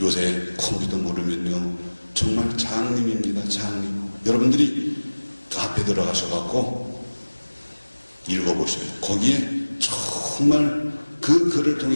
컴퓨터 모르면요 정말 장님입니다. 장님. 여러분들이 카페 들어가셔갖고 읽어보셔요. 거기에 정말 그 글을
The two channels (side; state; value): both; inverted; correlation -1.00